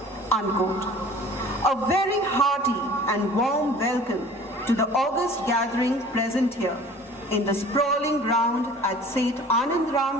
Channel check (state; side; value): normal; both; correlation 0.46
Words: Unquote. A very hearty and warm welcome to the august gathering present here in the sprawling ground at Seth